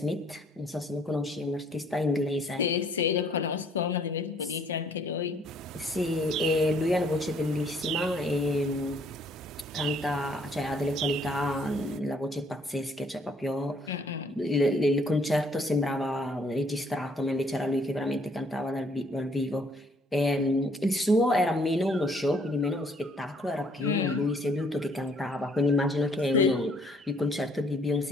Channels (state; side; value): normal; both; correlation 0.63